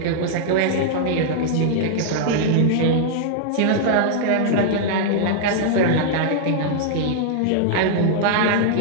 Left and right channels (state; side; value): different; both; correlation -0.01